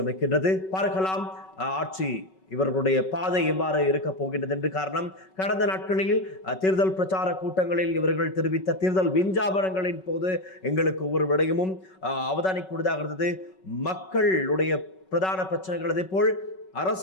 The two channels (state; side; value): late; right; 5.3 ms